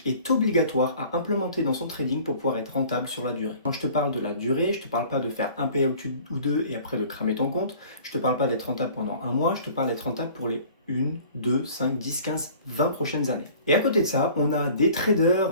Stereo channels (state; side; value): inverted; both; correlation -0.48